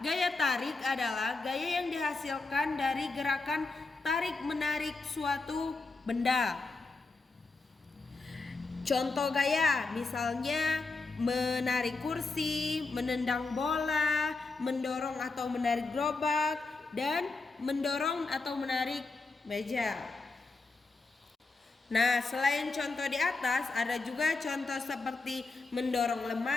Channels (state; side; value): quieter; right; 3.8 dB